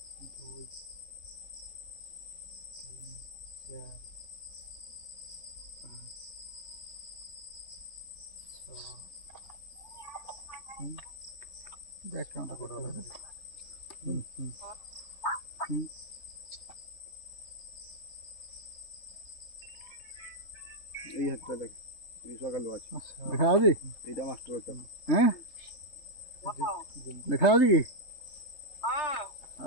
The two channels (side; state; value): right; late; 3.7 ms